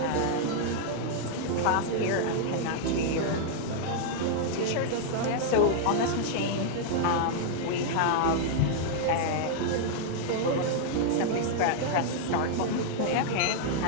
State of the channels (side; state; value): both; different; correlation -0.01